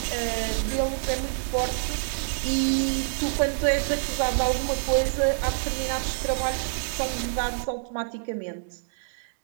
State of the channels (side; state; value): left; silent; digital silence